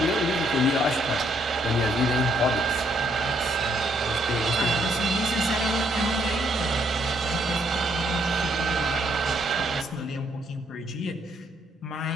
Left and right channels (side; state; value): both; normal; correlation 0.71